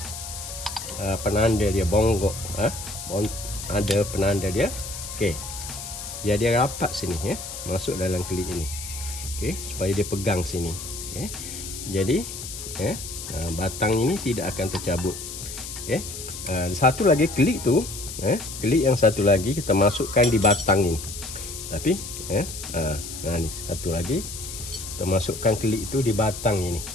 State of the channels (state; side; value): noise; left; hiss, 9 dB below the sound